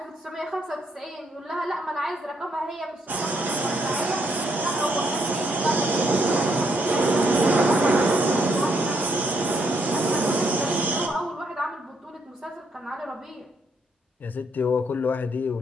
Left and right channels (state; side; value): normal; both; correlation 0.73